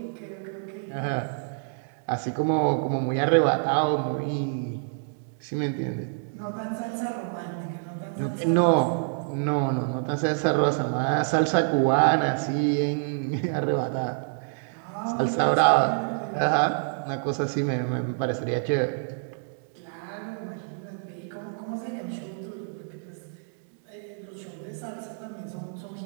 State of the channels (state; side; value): silent; left; digital silence